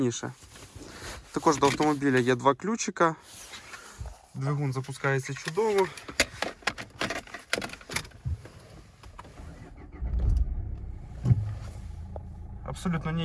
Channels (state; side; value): identical; both; correlation 1.00